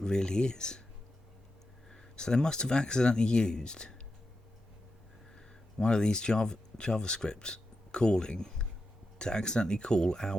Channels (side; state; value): both; normal; correlation 0.88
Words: really is. So they must have accidentally used one of these JavaScript calling to accidentally call